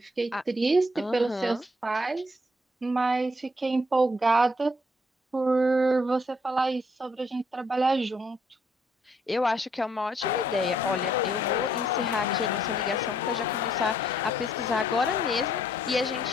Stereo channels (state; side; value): normal; both; correlation 0.68